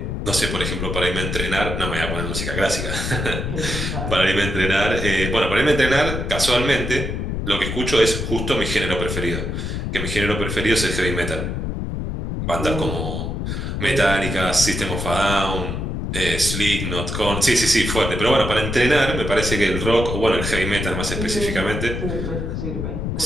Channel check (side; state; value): left; noise; rumble, 3 dB below the sound